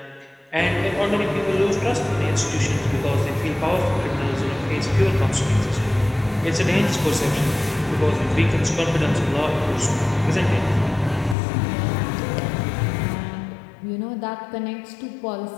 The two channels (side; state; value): right; drops out; at 11.4 s